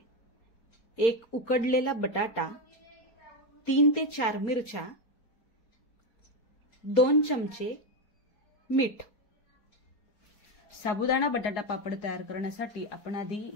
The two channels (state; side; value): late; right; 4.3 ms